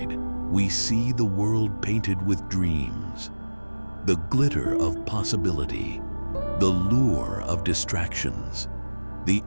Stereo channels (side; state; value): both; inverted; correlation -1.00